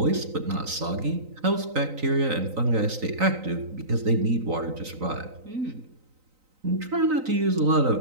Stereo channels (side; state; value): left; late; 3.9 ms